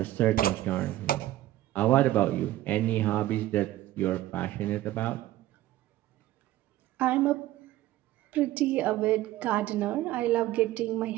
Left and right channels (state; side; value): quieter; left; 15.1 dB